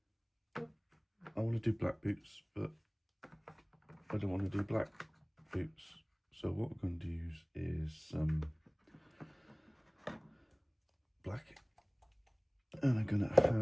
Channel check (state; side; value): identical; both; correlation 1.00